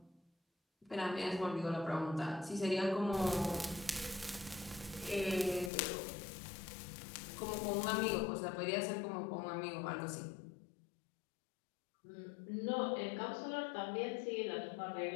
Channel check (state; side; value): drops out; right; at 5.7 s